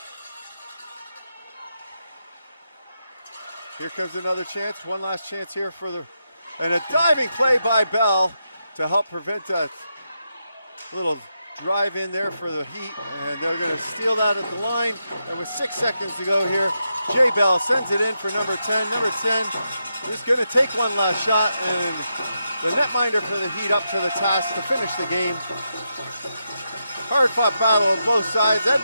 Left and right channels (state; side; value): inverted; both; correlation -0.85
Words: Here comes another chance. One last chance here for and a diving play by Bell to help prevent that little drive in there for the Heat, and they're going to steal that at the line. And with 6 seconds to go here, Jay Bell sends it in for number 10. Number 10 is going to take one last shot, and the netminder for the Heat up to the task to finish the game. Hard-fought battle on both sides.